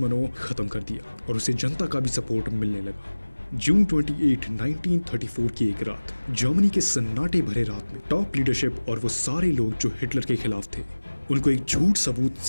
खत्म कर दिया और उसे जनता का भी सपोर्ट मिलने लगा। जून 28, 1934 की एक रात, जर्मनी के सन्नाटे भरे रात में टॉप लीडरशिप और वो सारे लोग जो हिटलर के खिलाफ थे, उनको एक झूठ सबूत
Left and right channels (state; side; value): inverted; both; correlation -1.00